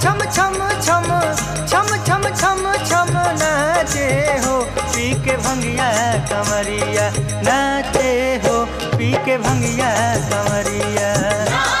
छम छम छम छम छम छम छम नाचे हो पी के भंगिया कमरिया नाचे हो पी के भंगिया कमरिया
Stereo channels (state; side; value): identical; both; correlation 1.00